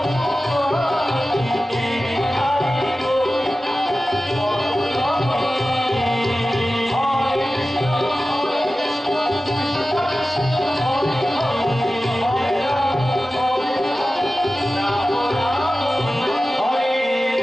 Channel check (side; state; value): both; normal; correlation 0.95